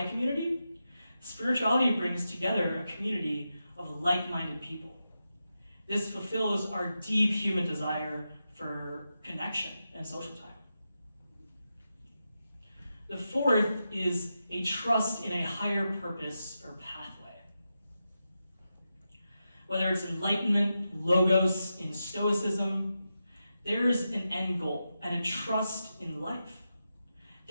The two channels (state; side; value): inverted; both; correlation -0.89